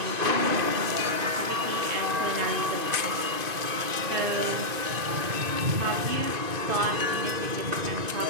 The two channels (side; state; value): left; late; 2.5 ms